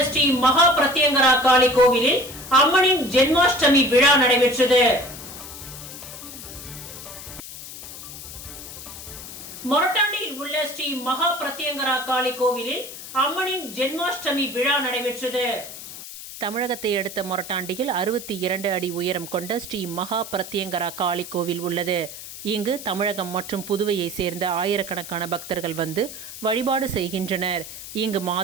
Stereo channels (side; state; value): left; noise; hiss, 12 dB below the sound